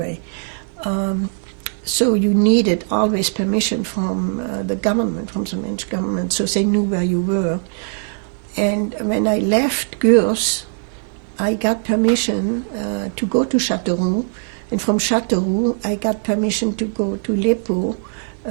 So you needed always permission from the government, from the French government, so they knew where you were. And when I left Gurs, I got permission to go to Châteauroux, and from Châteauroux I got permission to go to Lepaud.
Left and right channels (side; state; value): left; silent; digital silence